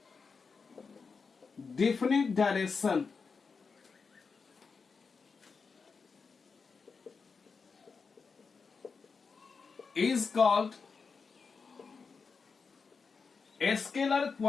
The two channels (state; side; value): quieter; right; 5.0 dB